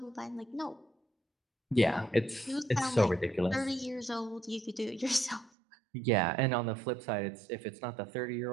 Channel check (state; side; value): drops out; left; at 5.5 s